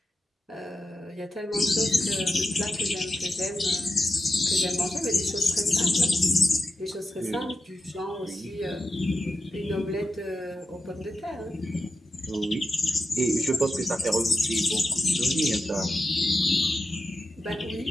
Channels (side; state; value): both; normal; correlation 0.88